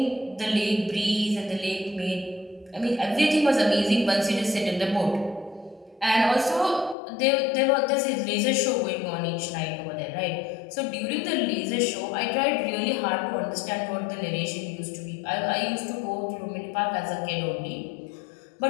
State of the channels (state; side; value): drops out; right; at 7.0 s